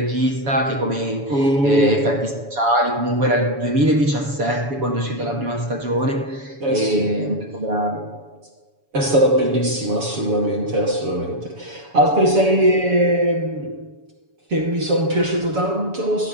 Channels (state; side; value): late; left; 7.1 ms